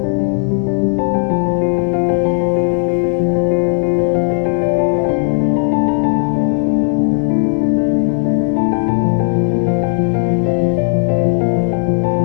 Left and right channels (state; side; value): silent; right; digital silence